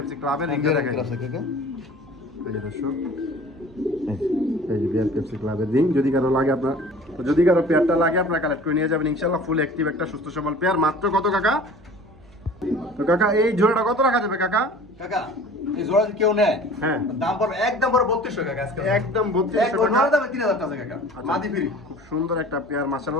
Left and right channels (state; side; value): noise; right; hum, 25 dB below the sound